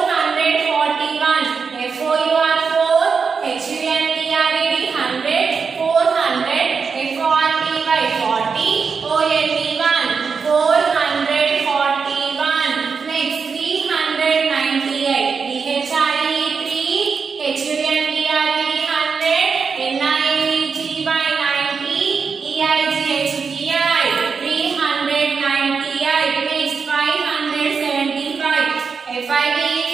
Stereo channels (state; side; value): quieter; left; 5.5 dB